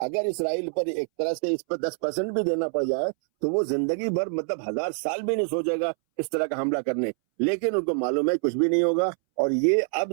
اسرائیل پر ایک طرح سے اس پر 10% بھی دینا پڑ جائے تو وہ زندگی بھر, مطلب 1000 سال بھی نہیں سوچے گا اس طرح کا حملہ کرنے. لیکن ان کو معلوم ہے کچھ بھی نہیں ہوگا, اور یہ اب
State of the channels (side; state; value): left; silent; 61 dB below the other